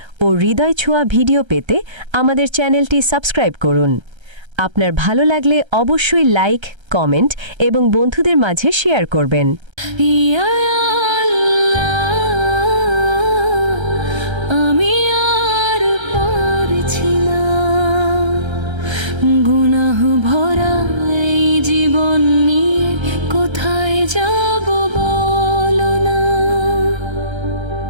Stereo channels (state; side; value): late; left; 1.3 ms